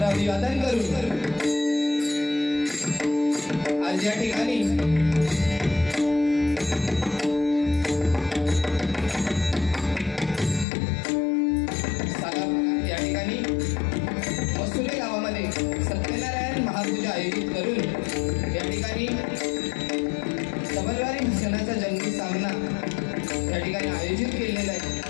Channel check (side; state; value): right; drops out; at 10.7 s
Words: अभिवादन करू। आज या ठिकाणी मसुले गावामध्ये सत्यनारायण महापूजा आयोजित करून या ठिकाणी सबलवारी भजनाचा जंगी सामना या ठिकाणी आयोजित केलेला आहे